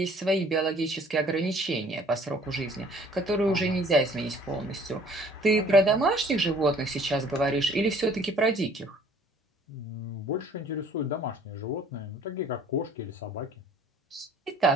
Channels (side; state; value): both; normal; correlation 0.55